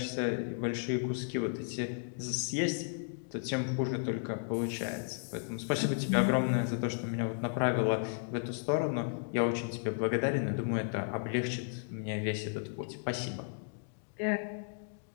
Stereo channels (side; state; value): right; silent; digital silence